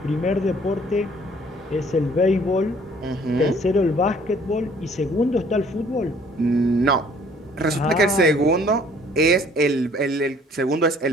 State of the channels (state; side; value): normal; both; correlation 0.57